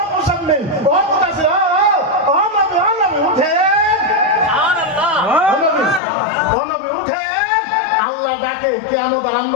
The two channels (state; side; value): drops out; right; at 6.0 s